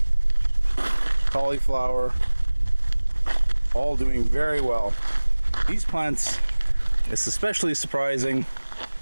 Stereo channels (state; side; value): inverted; both; correlation -1.00